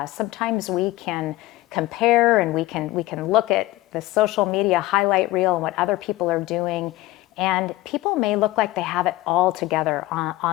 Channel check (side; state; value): right; quieter; 17.9 dB